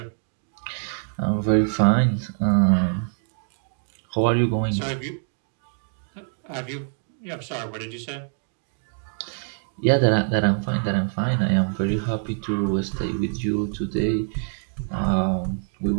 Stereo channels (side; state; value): left; silent; 62 dB below the other